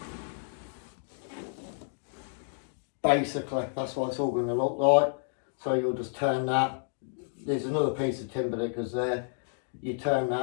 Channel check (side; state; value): right; silent; digital silence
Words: basically that's what it's all going to look like. So you'll just turn that. There's another piece of timber that goes there. You turn